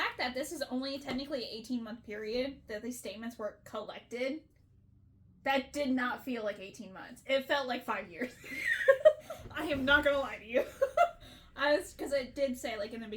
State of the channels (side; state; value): both; identical; correlation 1.00